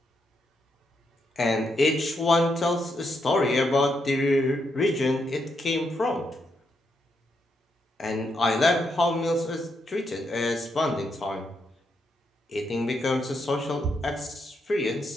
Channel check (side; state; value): both; normal; correlation 0.80